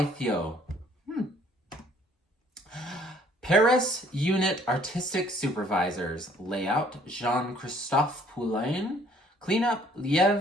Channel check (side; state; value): both; normal; correlation 0.59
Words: Paris Unit Artistic Supervisors. Layout, Jean-Christophe Poulain. Cleanup,